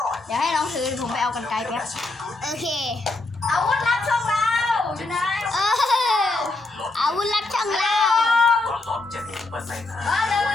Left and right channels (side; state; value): right; quieter; 3.1 dB